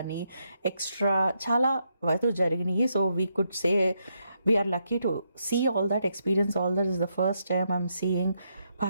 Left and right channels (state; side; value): inverted; both; correlation -0.79